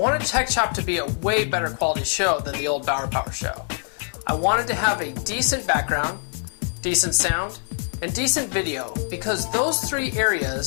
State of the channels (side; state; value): right; silent; 55 dB below the other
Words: Tech Shop to be a way better quality show than the old Bauer Power show. I wanted to have a decent background, decent sound, and decent video because those three